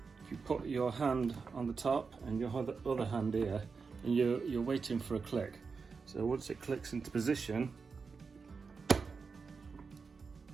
if you put your hand on the top and your other hand here, and you're waiting for a click. So once it clicks into position,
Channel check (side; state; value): left; quieter; 5.0 dB